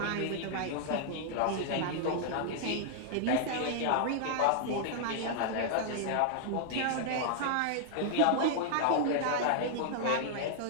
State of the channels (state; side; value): different; both; correlation -0.01